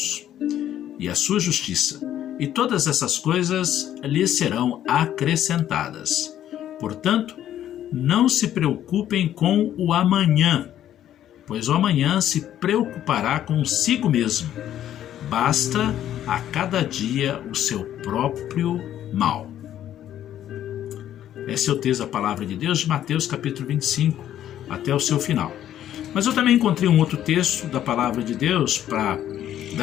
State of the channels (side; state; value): right; quieter; 11.4 dB